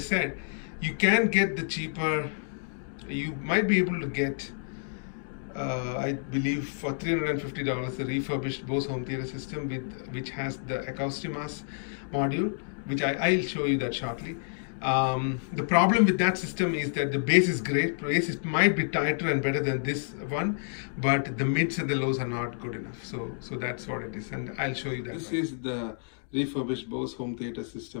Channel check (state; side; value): silent; right; digital silence